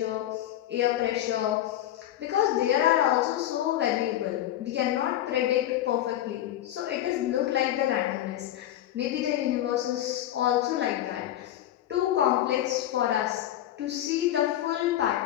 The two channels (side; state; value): right; quieter; 12.7 dB